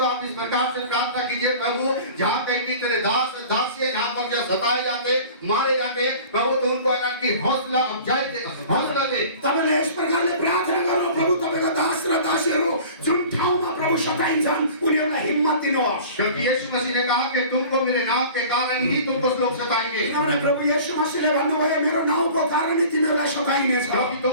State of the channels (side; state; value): both; inverted; correlation -0.43